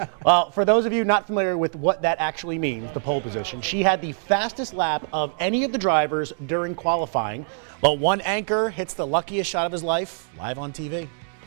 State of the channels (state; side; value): silent; left; digital silence